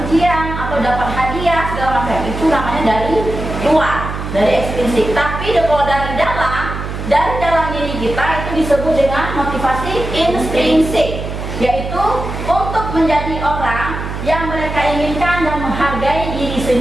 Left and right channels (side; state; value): right; noise; hum, 6 dB below the sound